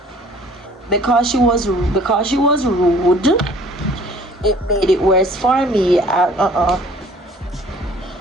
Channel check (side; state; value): both; normal; correlation 0.53